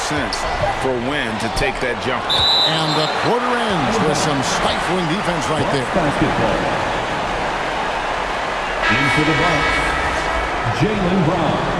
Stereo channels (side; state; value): both; identical; correlation 1.00